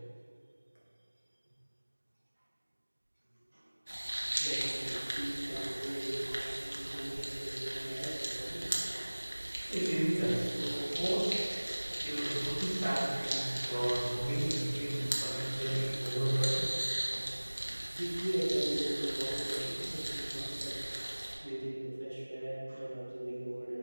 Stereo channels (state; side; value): inverted; both; correlation -1.00